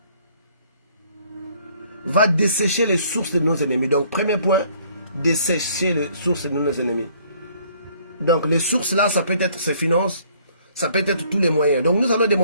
va dessécher les sources de nos ennemis. Donc premier point, dessécher les sources de nos ennemis. Donc les sources là, ça peut être ses finances, ça peut être tous les moyens. Donc nous allons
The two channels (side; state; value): both; inverted; correlation -0.61